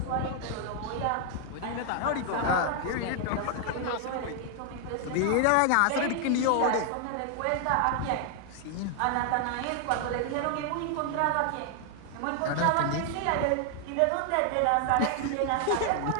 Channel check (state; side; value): different; both; correlation 0.00